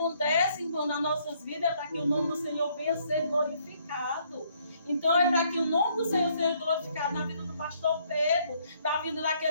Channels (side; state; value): both; inverted; correlation -0.67